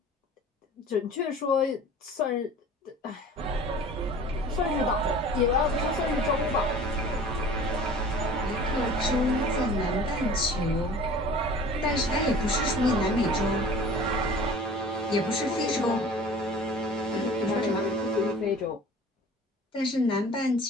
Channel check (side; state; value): both; normal; correlation 0.44